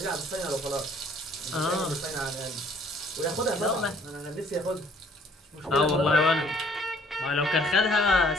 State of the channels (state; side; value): normal; both; correlation 0.60